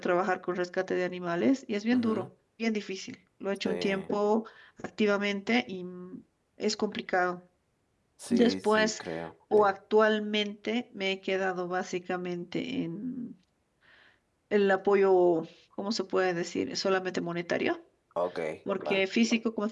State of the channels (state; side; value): identical; both; correlation 1.00